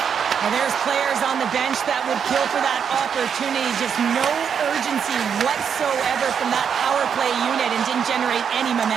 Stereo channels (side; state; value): left; quieter; 7.3 dB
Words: And there's players on the bench that would kill for that opportunity. Just no urgency whatsoever from that power play unit and didn't generate any